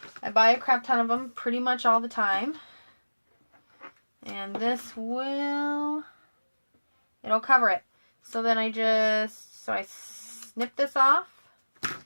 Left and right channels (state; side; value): inverted; both; correlation -1.00